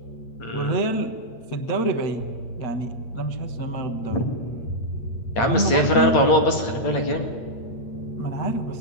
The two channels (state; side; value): late; right; 8.6 ms